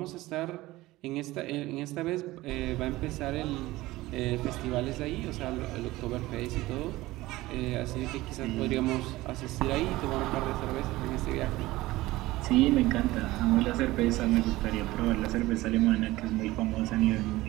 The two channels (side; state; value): left; quieter; 18.3 dB